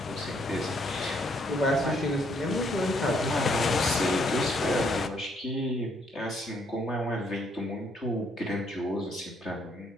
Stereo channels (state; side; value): normal; both; correlation 0.70